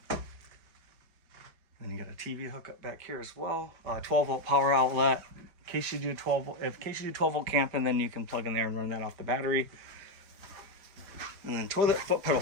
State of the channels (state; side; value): late; left; 5.1 ms